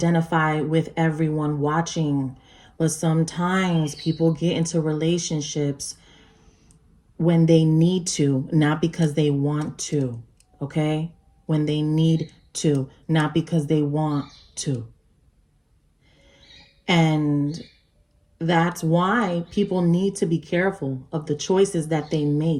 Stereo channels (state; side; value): identical; both; correlation 1.00